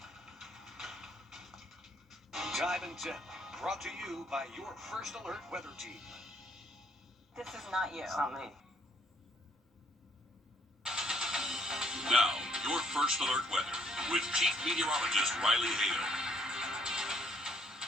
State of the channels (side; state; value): both; normal; correlation 0.68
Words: Time and Tip, brought to you by your First Alert weather team. This is not you. It's not me. Now, your First Alert weather with Chief Meteorologist Riley Hale.